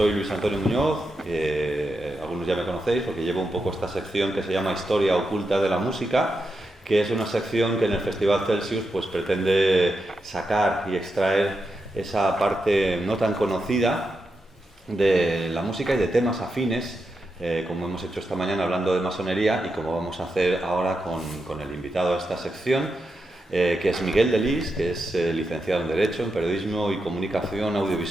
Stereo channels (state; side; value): normal; both; correlation 0.86